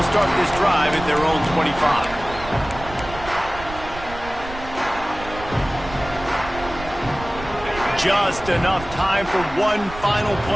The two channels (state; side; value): noise; right; rumble, 13 dB below the sound